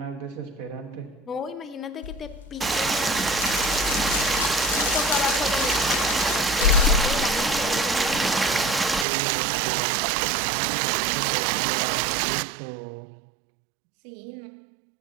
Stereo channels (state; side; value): drops out; left; at 9.1 s